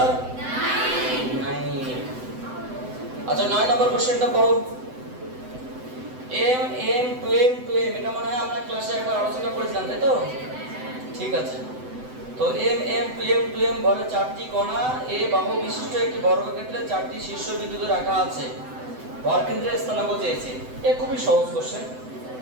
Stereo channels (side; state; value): left; late; 7.9 ms